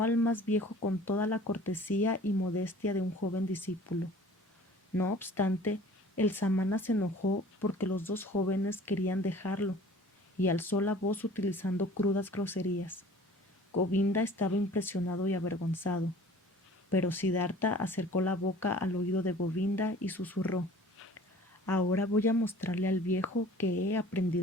al más viejo con toda la cortesía y modestia de un joven discípulo. No obstante, el samana se enojó porque los dos jóvenes querían dejarlo y alzó la voz utilizando crudas groserías. Govinda estaba impresionado y avergonzado, pero Siddhartha acercó la boca al oído de Govinda y susurró: Ahora voy a mostrarle al viejo que he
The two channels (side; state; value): both; normal; correlation 0.47